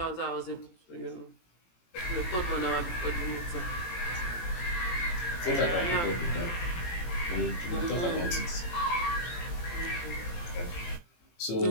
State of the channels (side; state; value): right; late; 18 ms